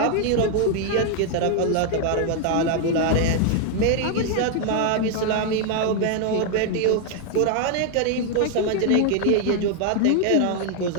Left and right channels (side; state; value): both; different; correlation 0.00